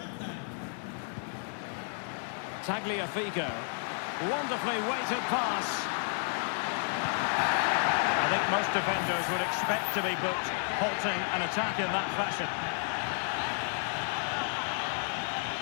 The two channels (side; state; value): right; silent; 57 dB below the other